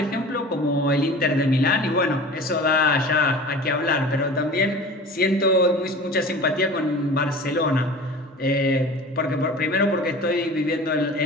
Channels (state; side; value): normal; both; correlation 0.39